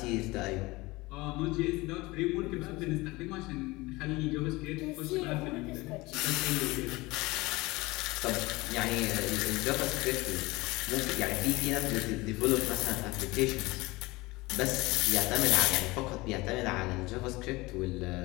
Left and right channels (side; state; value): right; quieter; 21.9 dB